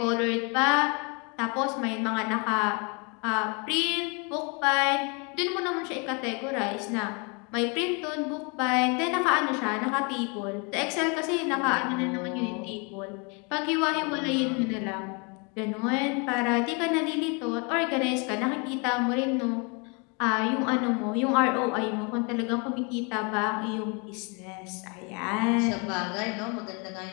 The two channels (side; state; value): right; quieter; 32.7 dB